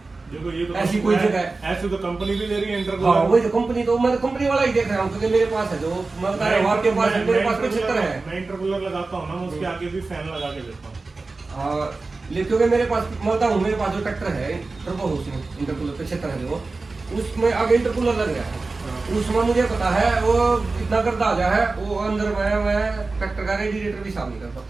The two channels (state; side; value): quieter; left; 3.7 dB